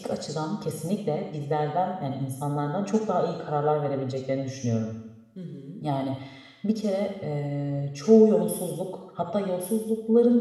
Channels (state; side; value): identical; both; correlation 1.00